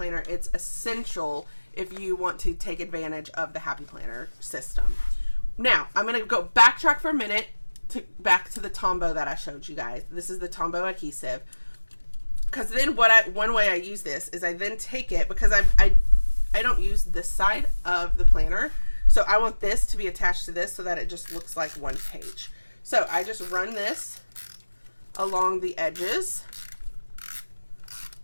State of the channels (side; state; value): both; inverted; correlation -1.00